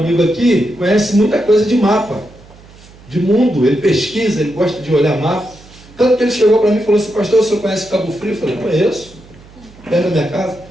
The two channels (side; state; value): right; noise; hum, 23 dB below the sound